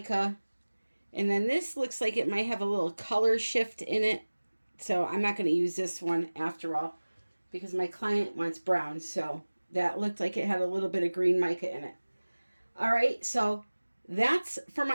And then this looks like it might have a little color shift in it. So I'm not going to use this one after all because my client wants brown. So that looked like it had a little bit of green mica in it. All right, so that's for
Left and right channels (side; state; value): both; inverted; correlation -1.00